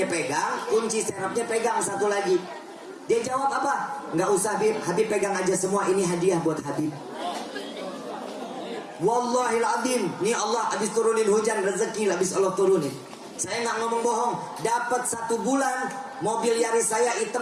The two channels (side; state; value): both; identical; correlation 1.00